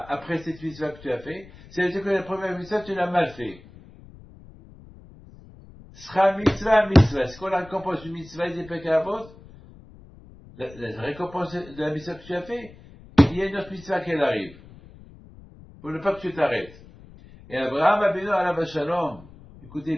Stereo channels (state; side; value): noise; left; rumble, 21 dB below the sound